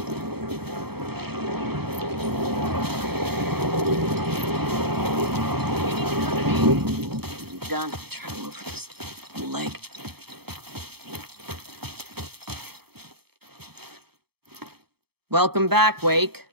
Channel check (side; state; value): left; late; 0.97 ms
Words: Done. Try to move this leg. Welcome back, Wake.